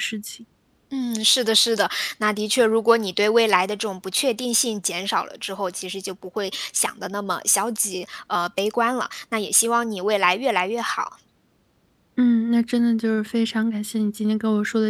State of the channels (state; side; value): identical; both; correlation 1.00